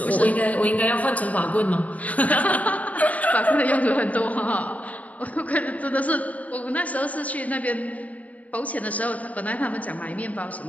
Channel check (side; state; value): right; late; 0.071 ms